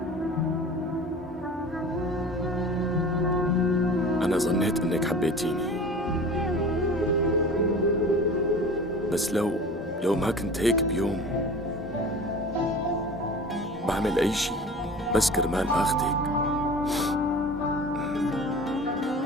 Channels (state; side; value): normal; both; correlation 0.39